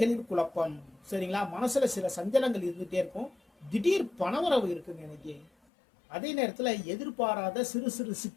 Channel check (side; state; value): right; drops out; at 5.5 s